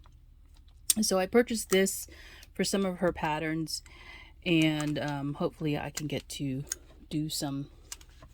So I purchased this for some of her patterns, and hopefully I can get to do some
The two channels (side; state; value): both; identical; correlation 1.00